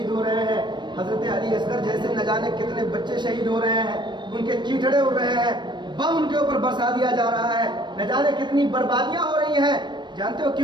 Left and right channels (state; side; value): late; left; 0.22 ms